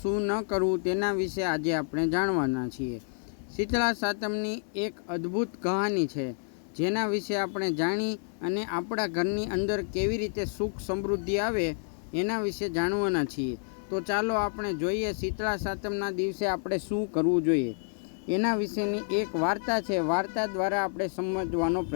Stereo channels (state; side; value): silent; right; 58 dB below the other